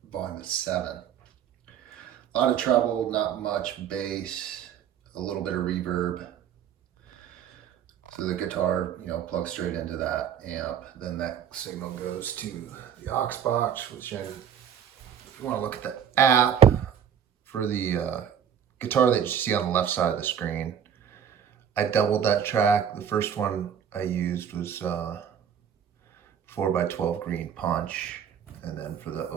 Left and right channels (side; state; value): left; quieter; 8.7 dB